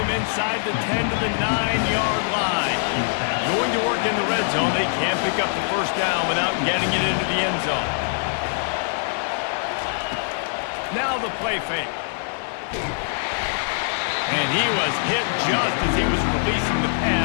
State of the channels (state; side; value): silent; right; 63 dB below the other